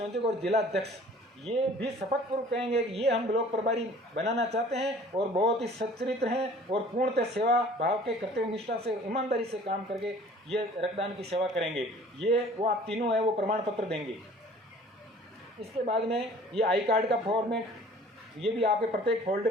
और जिला अध्यक्ष ये भी शपथ पूर्वक कहेंगे कि ये हम ब्लॉक प्रभारी बनाना चाहते हैं और बहुत ही सच्चरित्र हैं और पूर्णतः सेवा भाव के कर्तव्य निष्ठा से, ईमानदारी से काम करके ये रक्तदान की सेवा करेंगे। ये वो आप तीनों है वो प्रमाण पत्र देंगे। इसके बाद में ये आई कार्ड का फॉर्मेट, ये भी आपके प्रत्येक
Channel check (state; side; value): normal; both; correlation 0.49